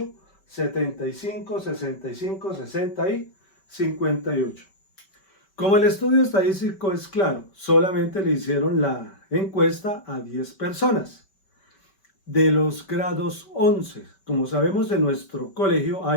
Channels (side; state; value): right; late; 5.2 ms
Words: 75, 65, 60 y 58. Como el estudio estadístico es claro, solamente le hicieron la encuesta a 10 personas de los grados 11. Como sabemos, en nuestro colegio